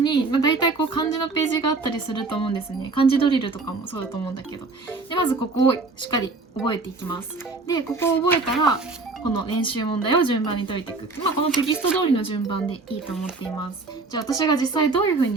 大体漢字のページがあったりすると思うんですね。漢字ドリルとかもそうだと思うんだけど。で、まずここをしっかり覚えていきます。で、ここを覚えたら、この練習問題を順番に解いていく。このテキスト通りの順番でいいと思っています。じゃあ私が実際どういう風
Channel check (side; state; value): left; quieter; 3.7 dB